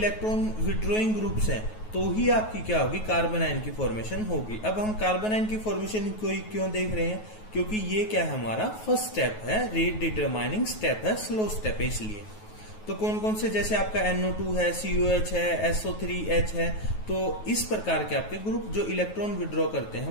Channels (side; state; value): right; late; 9.3 ms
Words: विड्रॉइंग ग्रुप्स हैं तो ही आपकी क्या होगी, कार्बन आयन की फॉर्मेशन होगी। अब हम कार्बन आयन की फॉर्मेशन को क्यों देख रहे हैं, क्योंकि ये क्या है, हमारा फर्स्ट स्टेप है, रेट डिटरमाइनिंग स्टेप है, स्लो स्टेप है, इसलिए। तो कौन कौन से, जैसे आपका NO2 है, COH है, SO3H है, तो इस प्रकार के आपके ग्रुप जो इलेक्ट्रॉन विड्रॉ करते